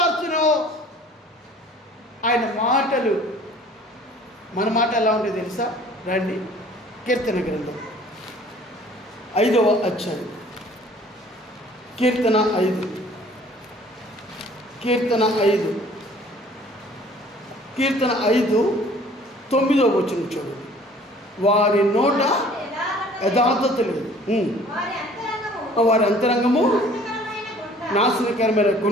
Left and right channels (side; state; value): both; normal; correlation 0.53